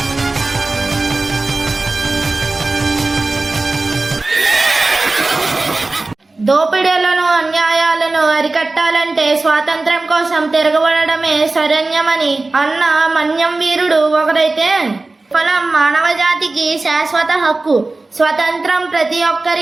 దోపిడీలను అన్యాయాలను అరికట్టాలంటే స్వాతంత్ర్యం కోసం తిరగబడమే శరణ్యమని అన్న మన్యం వీరుడు ఒకరైతే, ఫలం మానవ జాతికి శాశ్వత హక్కు, స్వతంత్రం ప్రతి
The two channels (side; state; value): left; quieter; 3.3 dB